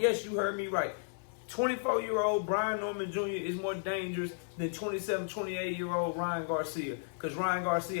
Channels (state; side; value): silent; right; 55 dB below the other